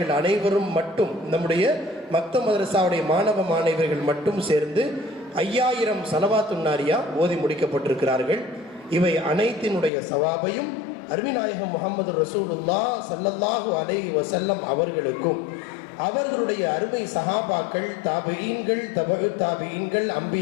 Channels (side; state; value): right; drops out; at 9.9 s